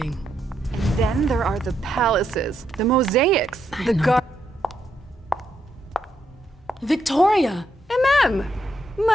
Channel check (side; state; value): both; normal; correlation 0.79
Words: And then there are the palaces, the mosaics, I the know Victoria! MM!